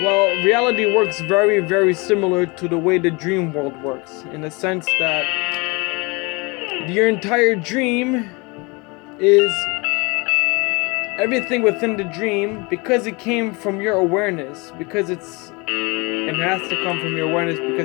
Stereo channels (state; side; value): quieter; right; 27.5 dB